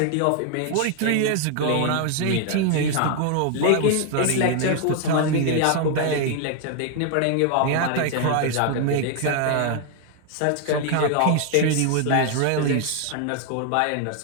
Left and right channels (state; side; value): different; both; correlation 0.00